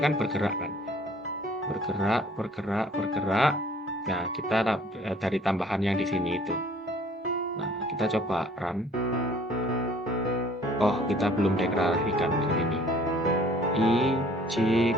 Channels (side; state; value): both; normal; correlation 0.55